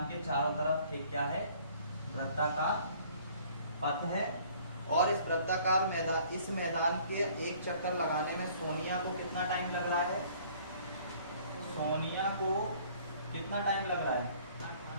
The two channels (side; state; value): both; inverted; correlation -0.56